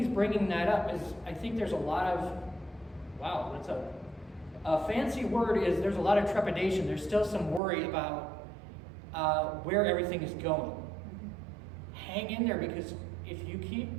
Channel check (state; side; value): drops out; left; at 7.6 s